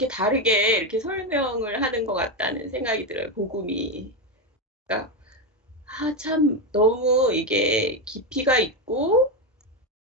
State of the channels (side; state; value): both; normal; correlation 0.10